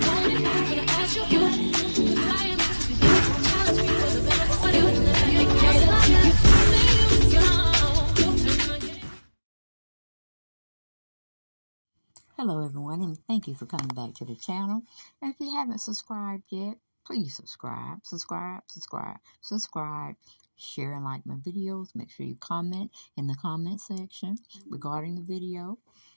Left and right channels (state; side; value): inverted; both; correlation -1.00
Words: I want it, I'm gonna ask you. Cause I am to be there. Challenge me for the better. What do you let me cater to you? Hello everyone, and thank you for coming back to the channel. And if you haven't subscribed yet, please subscribe, share and like my videos. Make sure you comment in the comment section regarding the video